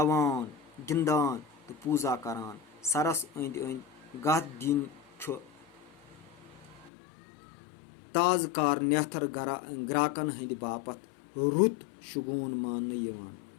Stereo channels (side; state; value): right; drops out; at 6.9 s